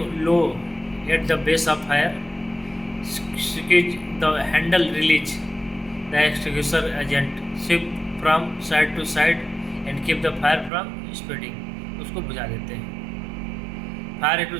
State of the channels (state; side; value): drops out; left; at 10.7 s